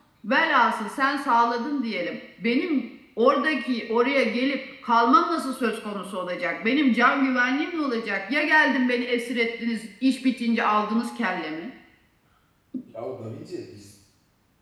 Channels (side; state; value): both; identical; correlation 1.00